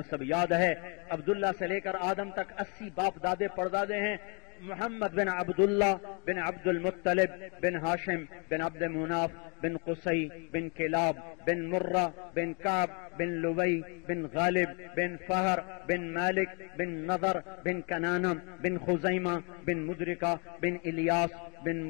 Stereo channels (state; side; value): quieter; right; 35.1 dB